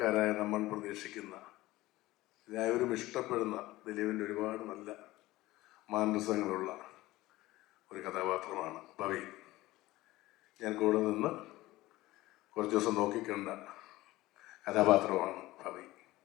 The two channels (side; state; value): right; quieter; 18.0 dB